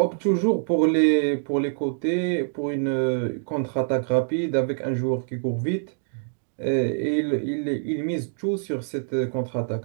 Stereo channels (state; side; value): silent; left; digital silence